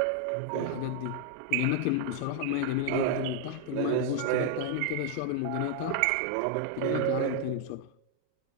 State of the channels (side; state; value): both; different; correlation 0.00